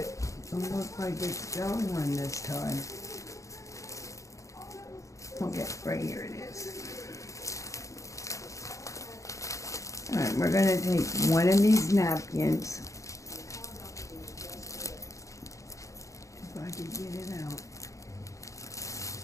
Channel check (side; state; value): right; late; 0.15 ms